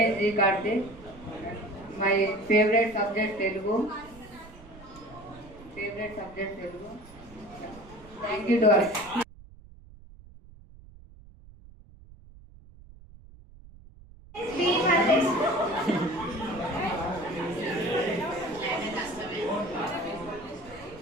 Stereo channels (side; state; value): right; noise; rumble, 20 dB below the sound